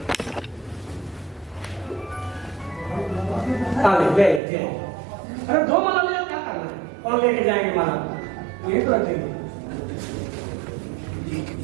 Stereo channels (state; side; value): drops out; left; at 4.4 s